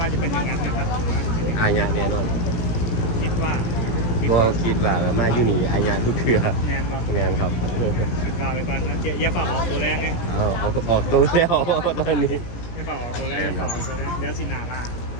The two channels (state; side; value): late; right; 17 ms